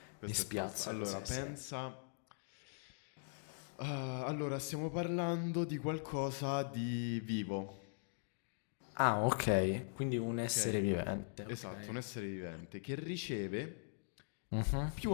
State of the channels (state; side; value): silent; right; digital silence